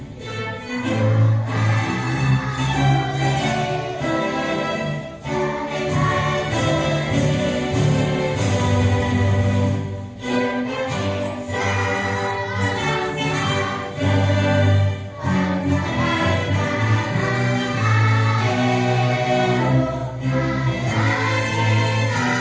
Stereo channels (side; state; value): both; identical; correlation 1.00